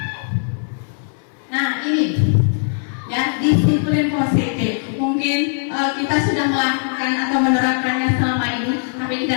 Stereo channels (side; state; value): right; silent; 59 dB below the other